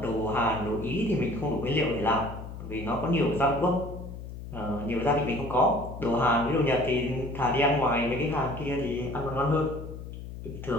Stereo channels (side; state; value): left; noise; hum, 10 dB below the sound